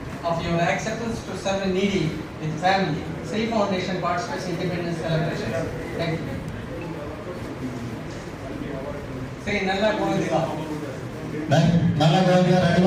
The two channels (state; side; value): identical; both; correlation 1.00